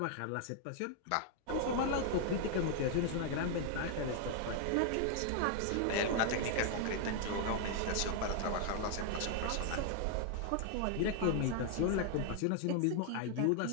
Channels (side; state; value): both; different; correlation 0.00